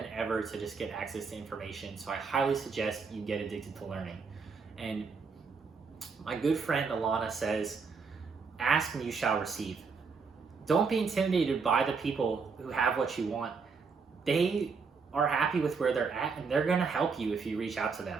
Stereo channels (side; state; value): left; quieter; 5.1 dB